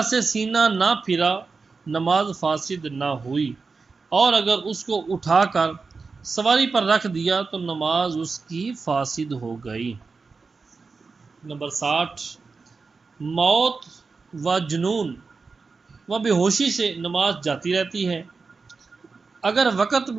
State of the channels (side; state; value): left; quieter; 4.5 dB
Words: سے سینہ نہ پھرا، نماز فاسد نہ ہوئی، اور اگر اس کو اٹھا کر سواری پر رکھ دیا تو نماز اس کی فاسد ہو گئی۔ نمبر 60، موت و جنون و بے ہوشی سے نماز جاتی رہتی ہے۔ اگر وقت